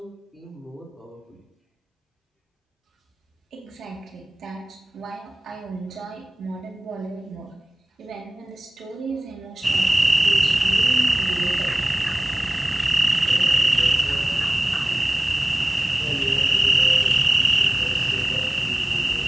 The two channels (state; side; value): normal; both; correlation 0.98